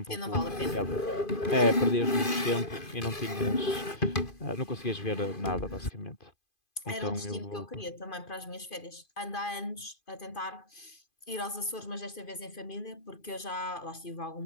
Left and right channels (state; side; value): late; right; 2.5 ms